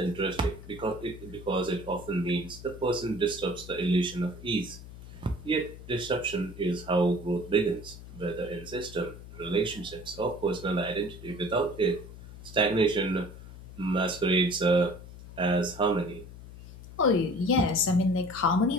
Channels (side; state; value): left; noise; hum, 15 dB below the sound